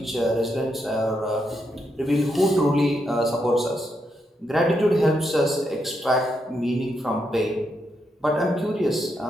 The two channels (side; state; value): both; normal; correlation 0.81